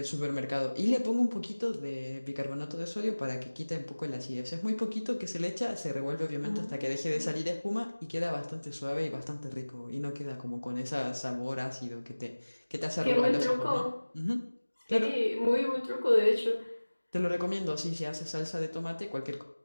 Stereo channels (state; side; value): inverted; both; correlation -1.00